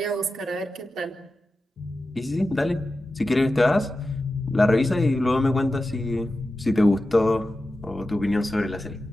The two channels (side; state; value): both; normal; correlation 0.93